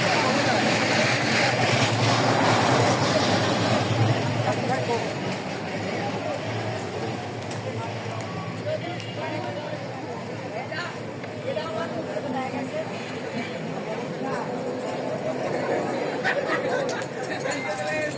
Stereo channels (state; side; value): identical; both; correlation 1.00